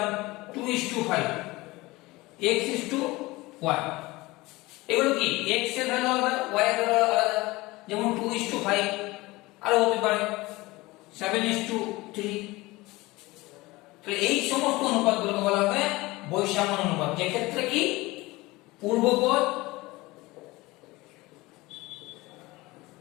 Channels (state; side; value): quieter; right; 21.0 dB